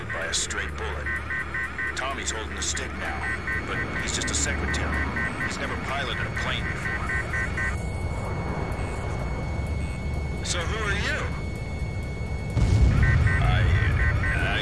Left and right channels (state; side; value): identical; both; correlation 1.00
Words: by a stray bullet. Tommy's holding the stick now, but he's just a secretary. He's never piloted a plane before. So who are you?